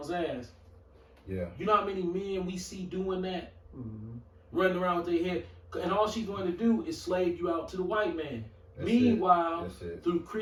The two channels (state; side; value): identical; both; correlation 1.00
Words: ass. Yeah. You know how many men we see doing that? Mm-hmm. Running around with their head. And all she's going to do is slave you out to the white man. That's Meanwhile, it. through